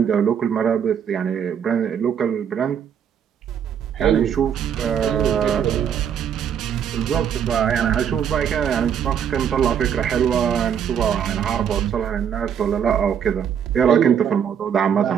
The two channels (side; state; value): left; quieter; 8.3 dB